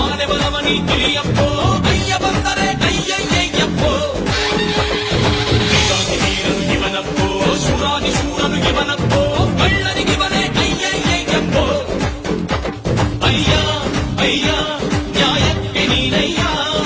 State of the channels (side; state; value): both; identical; correlation 1.00